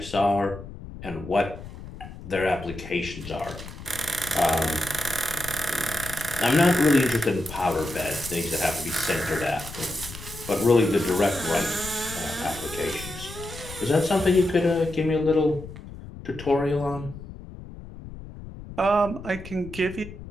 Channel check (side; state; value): left; noise; rumble, 13 dB below the sound